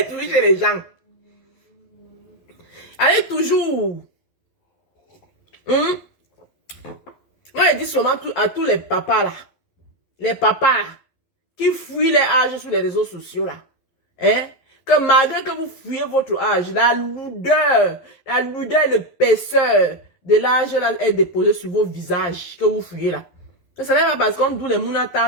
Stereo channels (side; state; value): right; late; 11 ms